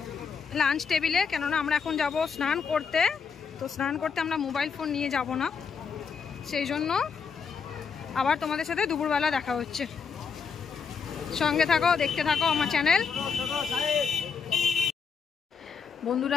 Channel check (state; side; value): quieter; right; 6.0 dB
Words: লাঞ্চ টেবিলে। কেননা আমরা এখন যাব স্নান করতে, তো স্নান করতে আমরা মোবাইল ফোন নিয়ে যাব না, সেই জন্য আবার তোমাদের সাথে দুপুরবেলা দেখা হচ্ছে। সঙ্গে থাকো, দেখতে থাকো আমার চ্যানেল।